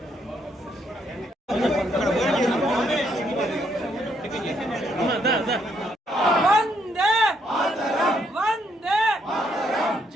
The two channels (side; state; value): both; normal; correlation 0.73